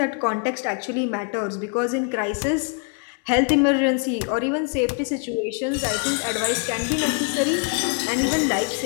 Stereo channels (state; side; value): quieter; right; 39.4 dB